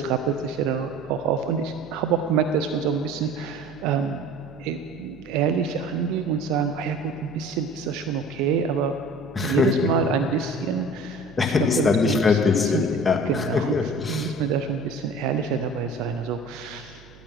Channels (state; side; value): noise; right; hum, 22 dB below the sound